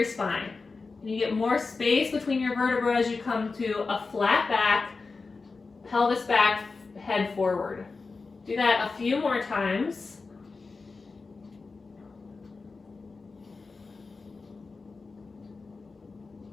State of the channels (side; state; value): right; quieter; 4.2 dB